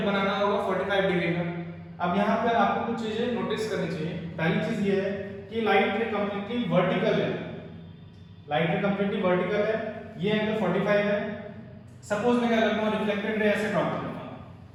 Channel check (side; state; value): both; identical; correlation 1.00